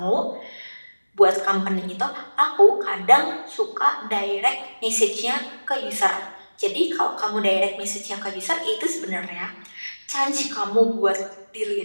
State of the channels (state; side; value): inverted; both; correlation -1.00